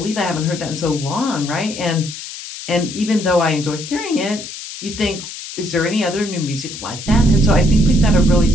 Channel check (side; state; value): left; noise; hiss, 11 dB below the sound